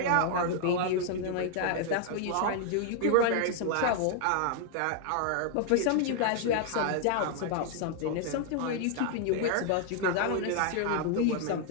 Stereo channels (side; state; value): both; different; correlation 0.00